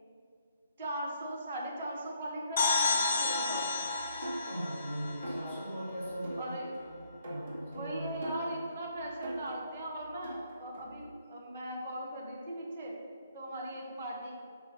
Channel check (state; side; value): inverted; both; correlation -0.70